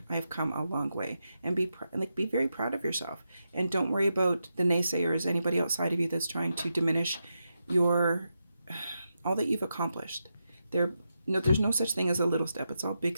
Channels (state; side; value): inverted; both; correlation -0.87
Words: I've come a long way, and be very proud of yourself, and don't worry about the naysayers, anybody outside of you that's trying to diminish all that you've accomplished. There's no such thing as a little step. It's all big